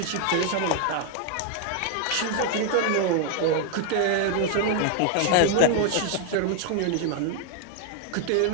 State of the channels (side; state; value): both; different; correlation 0.01